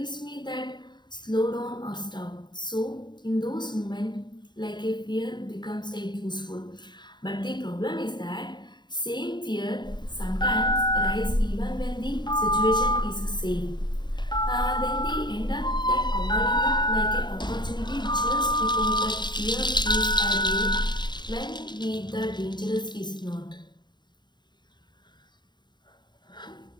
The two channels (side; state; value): right; late; 0.21 ms